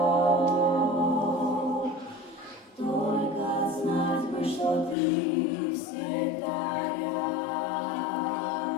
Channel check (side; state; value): right; drops out; at 5.0 s